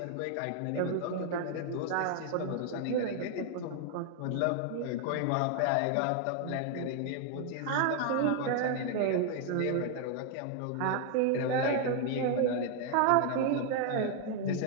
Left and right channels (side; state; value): both; different; correlation 0.00